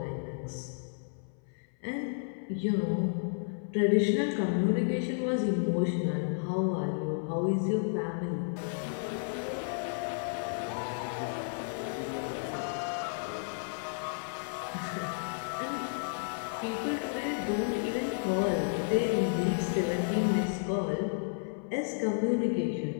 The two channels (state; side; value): silent; right; 56 dB below the other